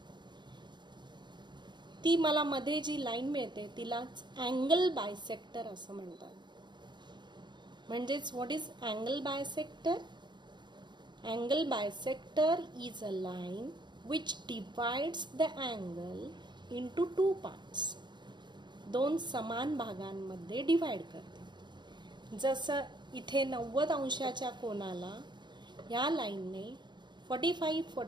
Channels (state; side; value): late; left; 0.22 ms